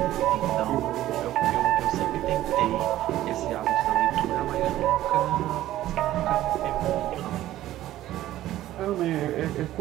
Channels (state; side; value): quieter; left; 14.2 dB